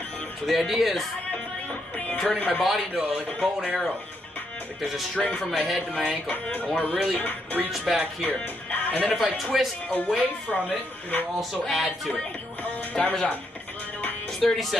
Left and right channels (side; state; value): both; normal; correlation 0.77